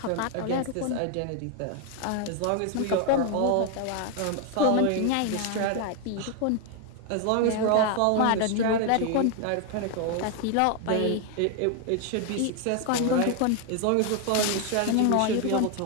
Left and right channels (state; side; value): different; both; correlation 0.01